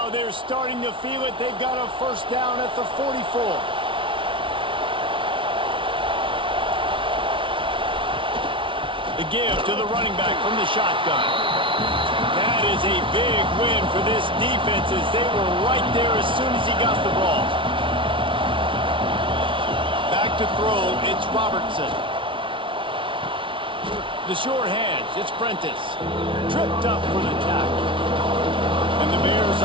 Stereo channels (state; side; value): late; left; 0.25 ms